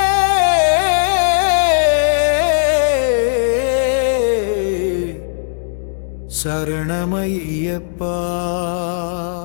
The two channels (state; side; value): silent; right; digital silence